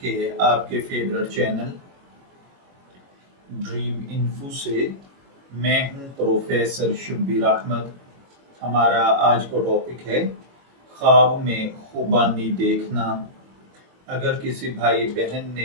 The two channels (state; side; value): late; left; 22 ms